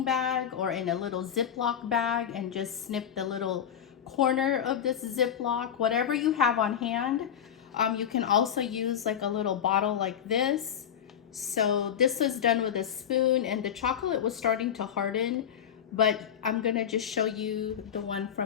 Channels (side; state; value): right; quieter; 9.0 dB